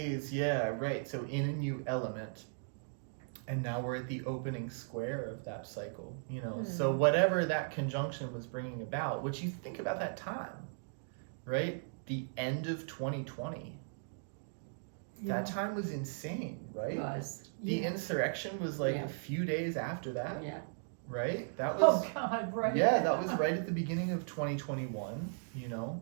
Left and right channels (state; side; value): silent; left; digital silence